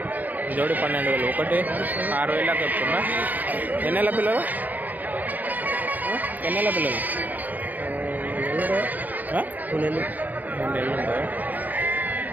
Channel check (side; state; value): left; late; 0.082 ms